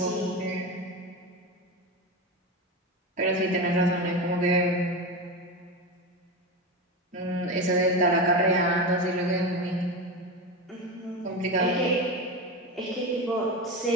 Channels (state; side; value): normal; both; correlation 0.20